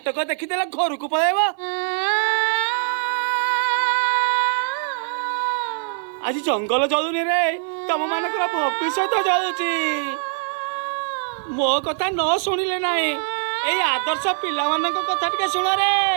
ଦେଖିଦେଲା ଘରକୁ ପଳେଇବ। ଆଜି ଜଙ୍ଗଲ ଜଳୁନି ରେ, ତମ ମାନଙ୍କର ଭବିଷ୍ୟତ ଜଳୁଛି। ମୋ କଥା ନ ଶୁଣିଲେ ନାହିଁ, ଏଇ ଆଦର୍ଶ ପିଲାମାନଙ୍କ କଥା ଟିକେ ଶୁଣ ରେ।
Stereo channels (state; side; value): silent; left; 63 dB below the other